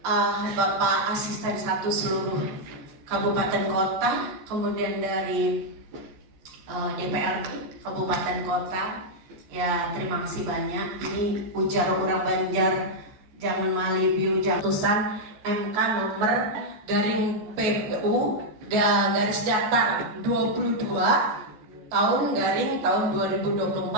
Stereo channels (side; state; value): left; late; 14 ms